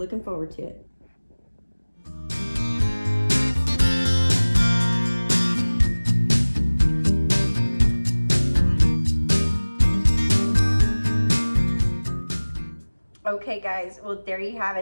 forward to it. Okay guys, well there you have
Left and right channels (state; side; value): inverted; both; correlation -1.00